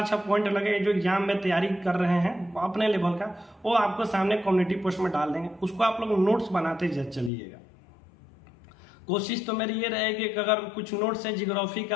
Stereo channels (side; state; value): right; drops out; at 7.3 s